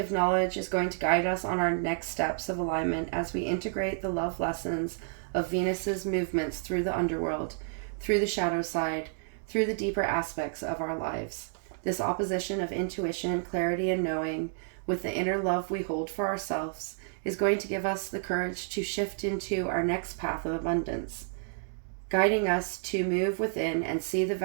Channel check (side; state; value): left; silent; digital silence